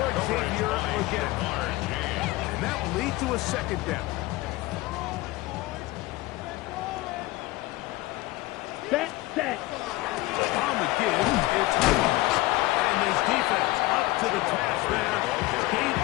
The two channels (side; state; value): right; quieter; 19.4 dB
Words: Xavier again. And that will lead to a 2nd down. Set. On the give, it's Hubbard. And this defense up to the task there. Gain